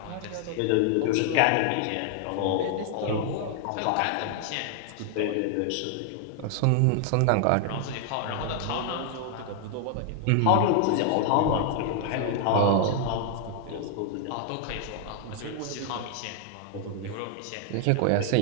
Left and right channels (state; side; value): different; both; correlation 0.00